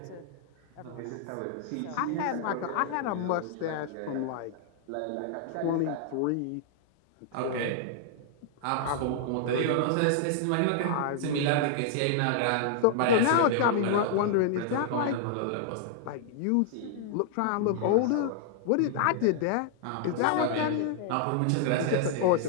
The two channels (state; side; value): different; both; correlation -0.01